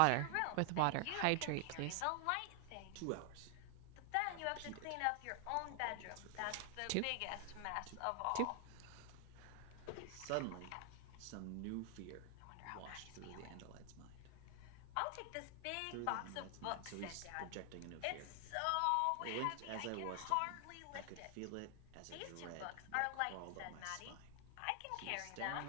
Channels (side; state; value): both; different; correlation 0.00